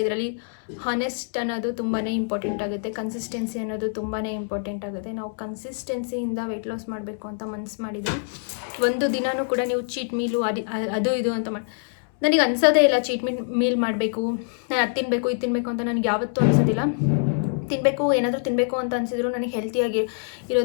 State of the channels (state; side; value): silent; right; 62 dB below the other